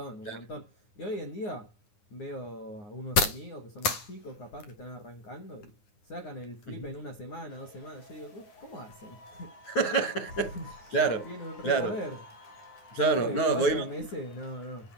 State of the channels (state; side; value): late; right; 9.9 ms